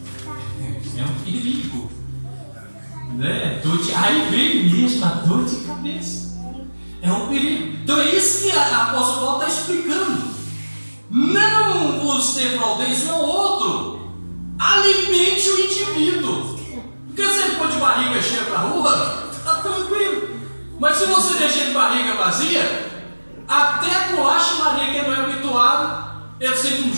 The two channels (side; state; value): both; inverted; correlation -1.00